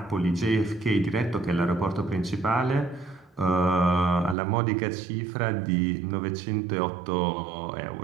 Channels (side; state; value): left; drops out; at 4.4 s